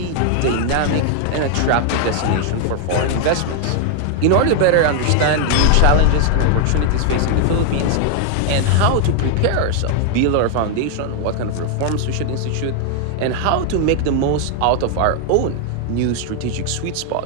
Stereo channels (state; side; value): different; both; correlation 0.00